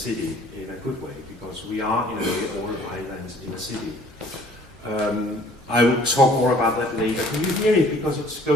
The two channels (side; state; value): both; normal; correlation 0.54